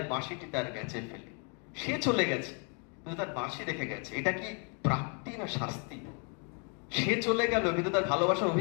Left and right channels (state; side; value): quieter; right; 38.4 dB